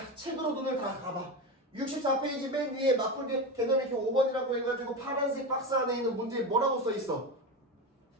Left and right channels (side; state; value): both; normal; correlation 0.20